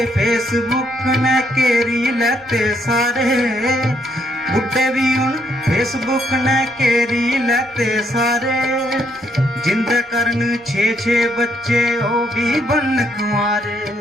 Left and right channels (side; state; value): right; noise; rumble, 30 dB below the sound